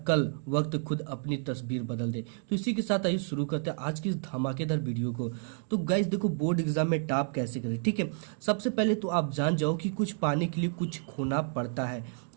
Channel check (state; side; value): silent; left; 58 dB below the other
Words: कल वक्त खुद अपनी तस्वीर बदल दे। तो इसी के साथ आइए शुरू करते हैं आज की इस धमाकेदार वीडियो को। तो गाइस देखो, बोर्ड एग्जाम में टॉप कैसे करें। ठीक है, सबसे पहले तो आप जान जाओ कि कुछ पाने के लिए कुछ खोना पड़ता है।